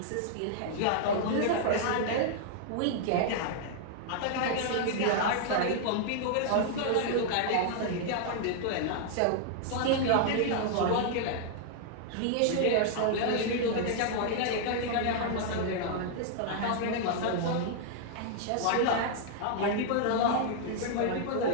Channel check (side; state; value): both; different; correlation -0.01